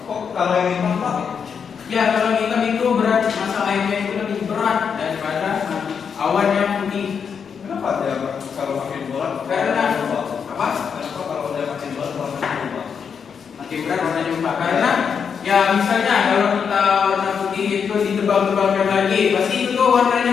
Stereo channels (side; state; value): right; quieter; 6.7 dB